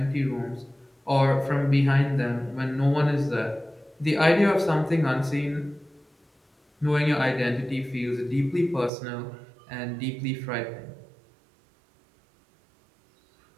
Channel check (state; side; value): drops out; left; at 8.9 s